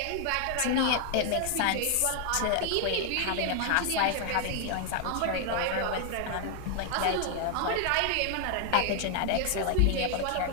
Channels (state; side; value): different; both; correlation 0.00